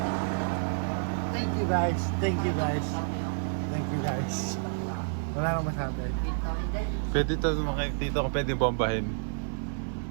Thank you guys. Thank you guys. Thank you guys. Wala akong masabi. Pwede ito dito ko pwede bombahin.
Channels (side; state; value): left; silent; digital silence